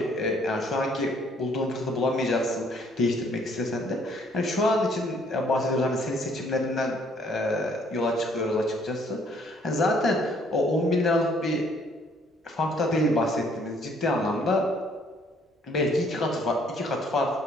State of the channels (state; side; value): normal; both; correlation 0.63